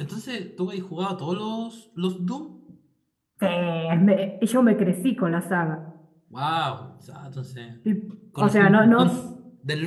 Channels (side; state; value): both; identical; correlation 1.00